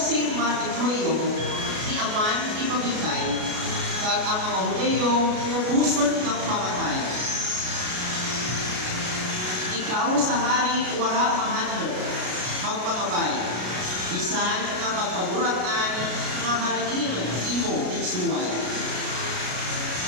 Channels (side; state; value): left; late; 33 ms